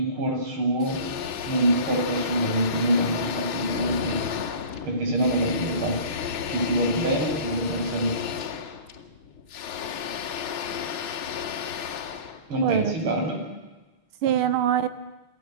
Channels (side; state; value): left; late; 6.4 ms